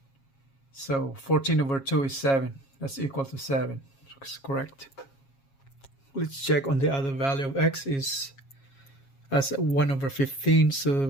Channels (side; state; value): right; late; 7.3 ms